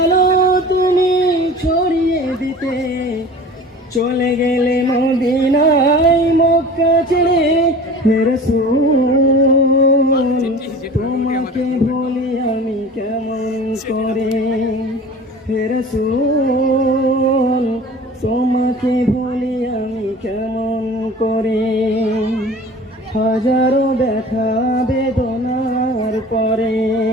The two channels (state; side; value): normal; both; correlation 0.40